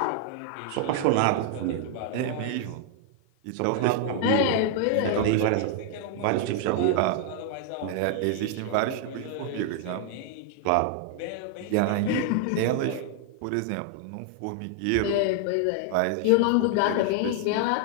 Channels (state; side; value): different; both; correlation 0.00